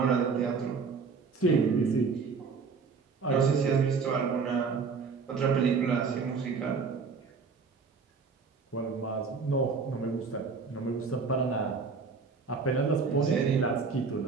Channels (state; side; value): quieter; left; 5.0 dB